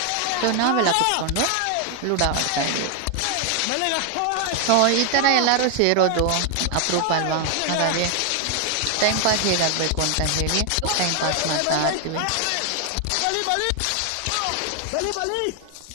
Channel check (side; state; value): both; different; correlation 0.00